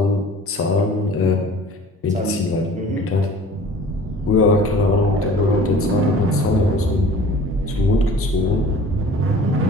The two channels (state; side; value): normal; both; correlation 0.45